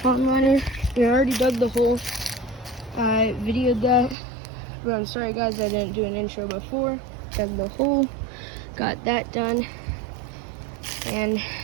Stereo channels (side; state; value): left; drops out; at 4.2 s